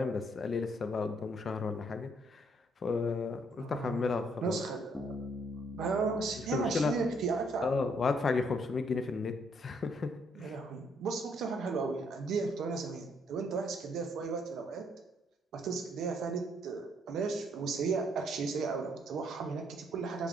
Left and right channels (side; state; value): both; normal; correlation 0.69